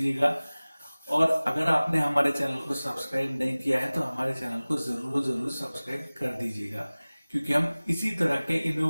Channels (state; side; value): inverted; both; correlation -0.99